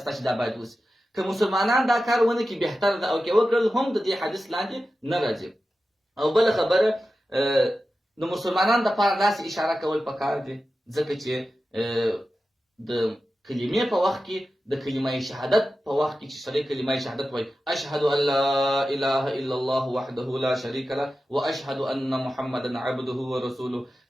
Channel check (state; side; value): normal; both; correlation 0.93